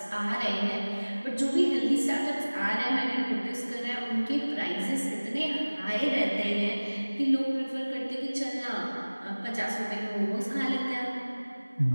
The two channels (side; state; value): both; inverted; correlation -1.00